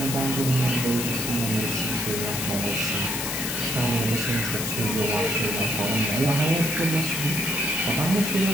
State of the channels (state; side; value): noise; left; hiss, 3 dB below the sound